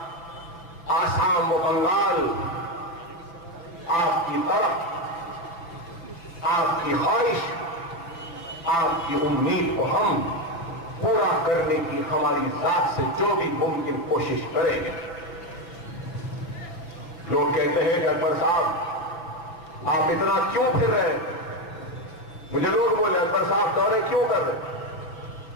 آسام و بنگال، آپ کی طرف، آپ کی خواہش، آپ کی امید کو ہم پورا کرنے کی ہماری ذات سے جو بھی ممکن کوشش کریں گے۔ لوگ کہتے ہیں کہ اکبر صاحب آپ اتنا کیوں پھر رہے ہیں؟ مجھے لوگ بولے اکبر صاحب دورے کیوں کر رہے ہیں؟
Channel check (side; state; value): right; late; 5.9 ms